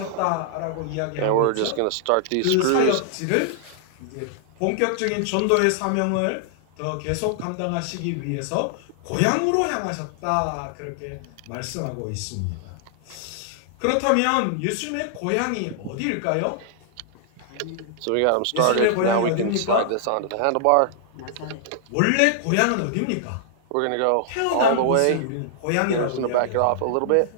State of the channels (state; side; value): different; both; correlation -0.01